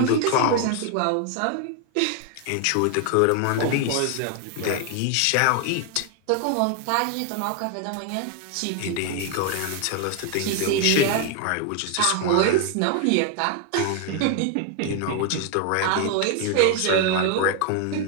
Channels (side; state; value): both; different; correlation 0.01